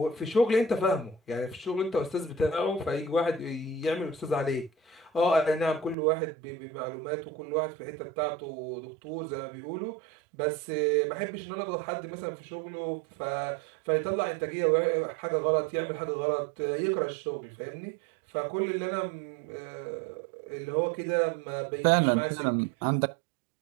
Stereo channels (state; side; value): drops out; left; at 6.0 s